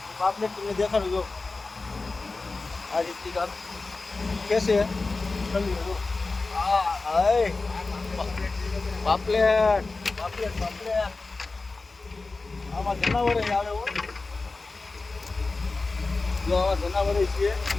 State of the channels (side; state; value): right; quieter; 3.6 dB